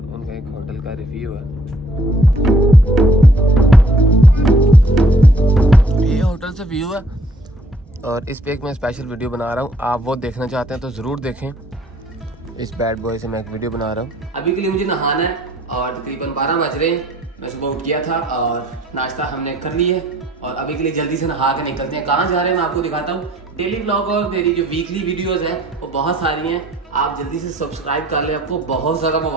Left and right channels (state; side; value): normal; both; correlation 0.60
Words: उनका एक होटल का रिव्यू है। ये होटल से व्यू है और इस पे एक मैं स्पेशल वीडियो बना रहा हूँ। आप वो देखना चाहते हैं तो ज़रूर देखें। इस बैड बॉय से मैं एक वीडियो बना रहा हूँ। अभी के लिए मुझे नहाना है और तकरीबन 12 बज रहे हैं। मैं सुबह उठ गया था और नाश्ता हमने कर लिया है और अभी के लिए जल्दी से नहा के निकलते हैं। कहाँ जा रहे हैं मैं आपको दिखाता हूँ। डेली व्लॉग और मेरी जो वीकली वीडियोस हैं वो बहुत सारी हैं। आप जल्दी से सब्सक्राइब कर लें, आपको बहुत सारा